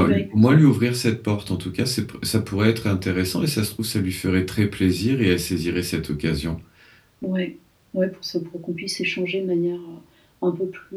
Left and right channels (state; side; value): identical; both; correlation 1.00